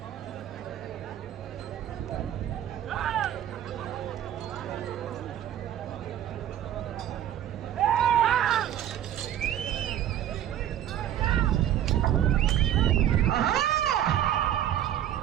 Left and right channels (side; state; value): left; quieter; 11.3 dB